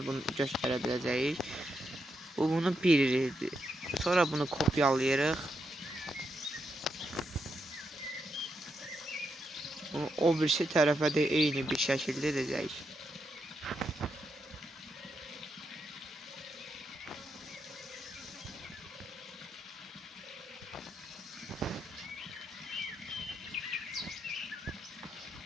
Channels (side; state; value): both; normal; correlation 0.82